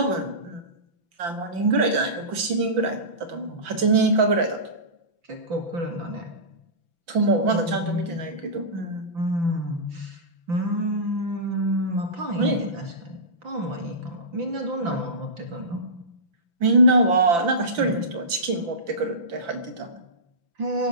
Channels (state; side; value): late; left; 5.9 ms